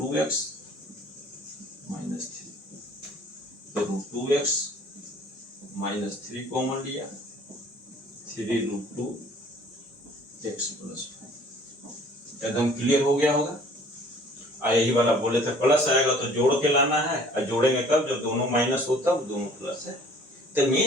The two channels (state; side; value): normal; both; correlation 0.53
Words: माइनस 3, तो √2x माइनस 3 कॉमन लिया, 3√2x प्लस 5। एकदम क्लियर हो गया होगा। यही वाला बोले थे प्लस आएगा तो जोड़ के लाना है, और जोड़ेंगे कब, जब दोनों माइनस हो तब दोनों प्लस है। तो